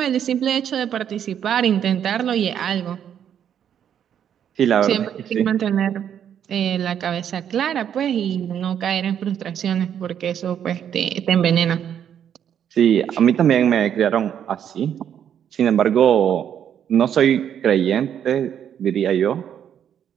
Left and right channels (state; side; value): quieter; left; 9.2 dB